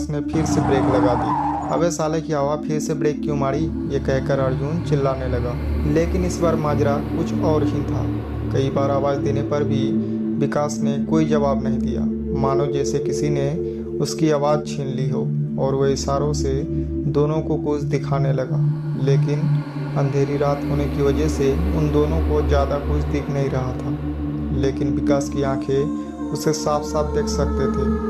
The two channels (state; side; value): identical; both; correlation 1.00